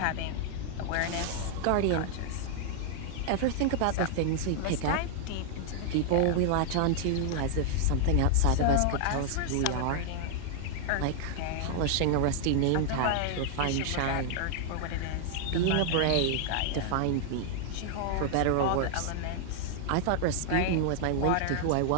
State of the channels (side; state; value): both; different; correlation 0.00